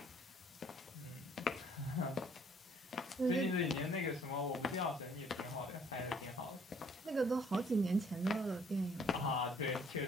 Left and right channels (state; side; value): normal; both; correlation 0.61